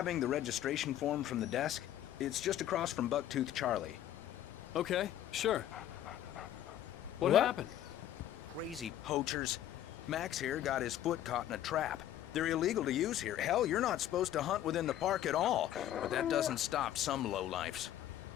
the registration form from the desk? It's just across from Bucktooth Charlie. Okay, sure. What happened? Crazy poachers. Max here got his foot caught in a trap. They're illegal to use here. Hell, you're not supposed to hunt within the park at all. But that doesn't stop some lowlifes.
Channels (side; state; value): right; quieter; 11.9 dB